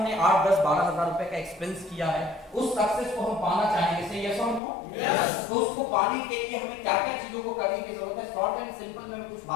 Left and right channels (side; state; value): right; drops out; at 4.6 s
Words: 8, 10, 12 हजार रुपए का एक्सपेंस किया है, उस सक्सेस को हम पाना चाहेंगे। से यस और नो? यस। तो उसको पाने के लिए हमें क्या क्या चीजों को करने की जरूरत है? शॉर्ट एंड सिंपल में मैं कुछ